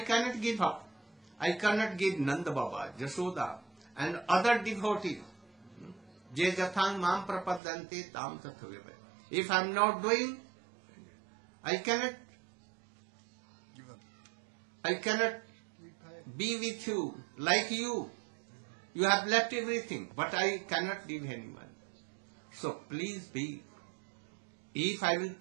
give up. I cannot give Nanda Baba, Jashoda, and other devotees. Je jathang mam prapadante tam tathavya. If I am not doing, I cannot be with you like you. You have left everything, but I cannot leave anyone. So please be. If I will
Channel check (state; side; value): drops out; left; at 7.6 s